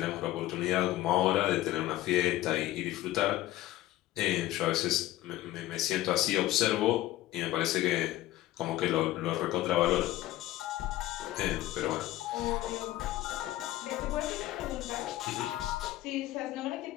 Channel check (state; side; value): quieter; right; 15.4 dB